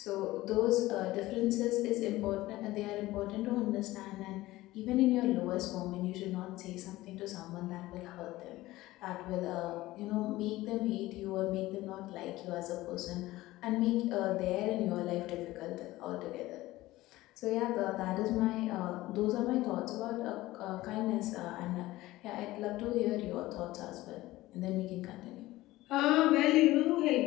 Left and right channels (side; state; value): right; quieter; 17.6 dB